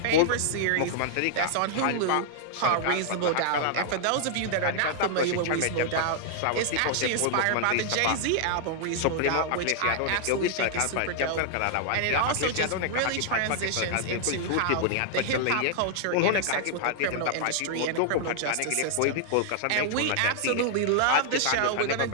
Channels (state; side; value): different; both; correlation -0.01